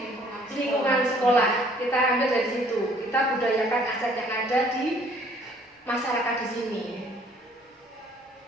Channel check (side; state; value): both; normal; correlation 0.59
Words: lingkungan sekolah kita ambil dari situ. Kita budayakan aset yang ada di masyarakat di sini.